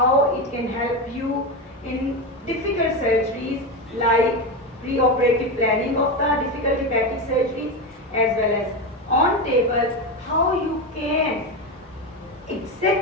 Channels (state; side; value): normal; both; correlation 0.16